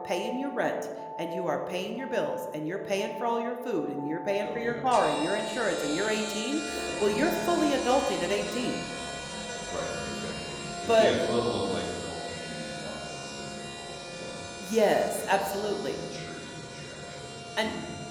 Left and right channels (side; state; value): both; identical; correlation 1.00